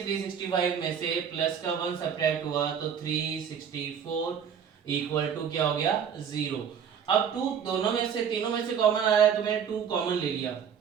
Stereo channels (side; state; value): left; quieter; 7.7 dB